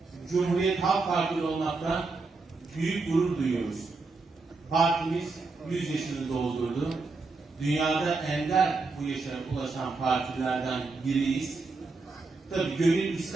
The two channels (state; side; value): quieter; left; 3.9 dB